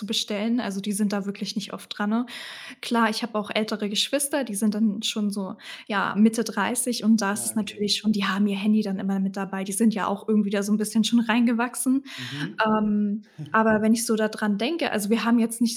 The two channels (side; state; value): both; identical; correlation 1.00